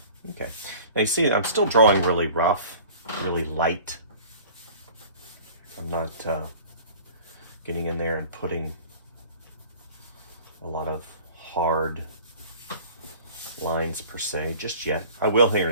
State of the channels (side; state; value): both; inverted; correlation -0.45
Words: Okay. Now you see, I'm still drawing really rough, really light. I'm not getting in there and putting a lot of hard lines per se just yet. I will here